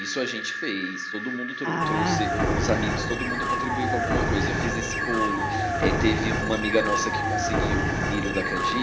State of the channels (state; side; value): identical; both; correlation 1.00